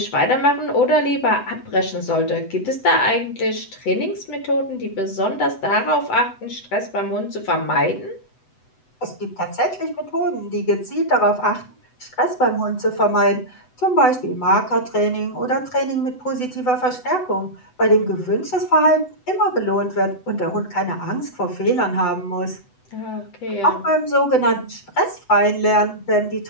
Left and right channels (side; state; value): right; late; 8.0 ms